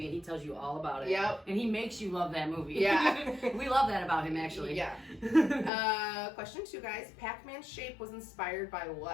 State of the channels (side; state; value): right; drops out; at 5.7 s